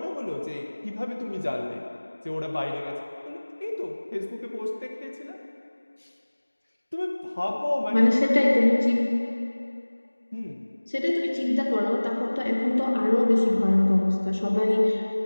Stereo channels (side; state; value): both; inverted; correlation -1.00